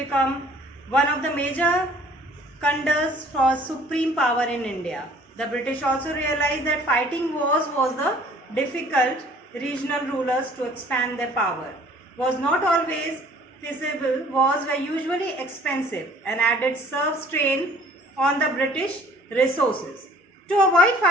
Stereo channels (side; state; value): both; normal; correlation 0.55